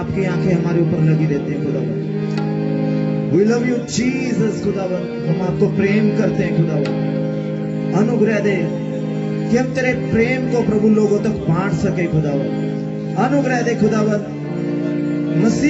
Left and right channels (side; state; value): both; identical; correlation 1.00